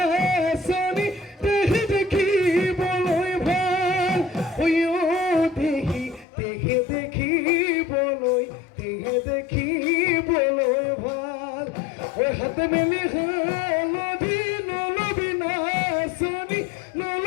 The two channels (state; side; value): drops out; right; at 6.2 s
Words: দেখি দেখি বলই ভাল দেখি দেখি দেখি দেখি বলই ভাল ওই হাতে মেলি নলবি নলবি নাচনি